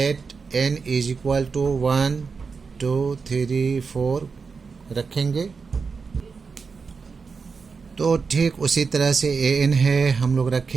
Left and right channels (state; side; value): quieter; left; 5.1 dB